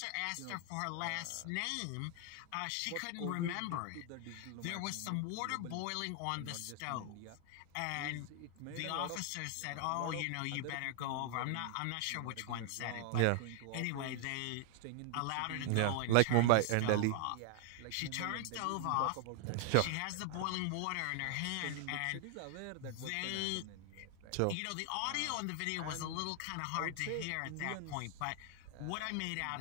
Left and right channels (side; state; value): both; different; correlation 0.00